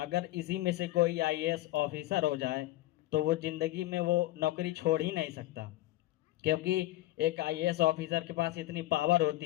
इसी में से कोई IAS ऑफिसर हो जाए तो वो ज़िंदगी में वो नौकरी छोड़ ही नहीं सकता, क्योंकि एक IAS ऑफिसर के पास इतनी पावर होती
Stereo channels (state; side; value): quieter; right; 16.6 dB